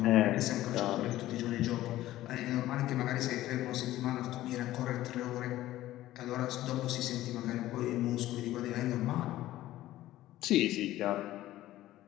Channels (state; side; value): quieter; right; 15.1 dB